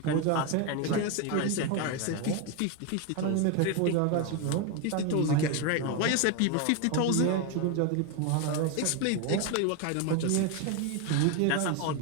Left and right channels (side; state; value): both; different; correlation 0.02